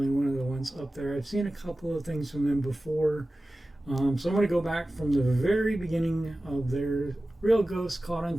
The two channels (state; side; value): normal; both; correlation 0.96